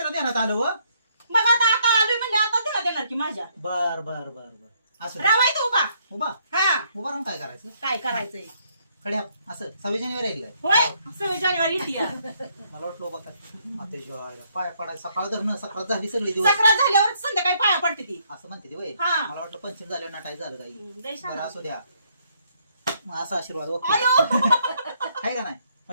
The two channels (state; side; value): inverted; both; correlation -0.70